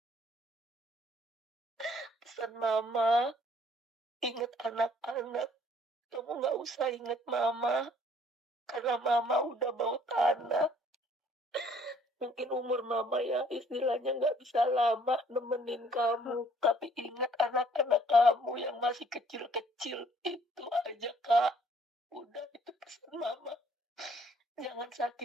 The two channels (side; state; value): both; normal; correlation 0.60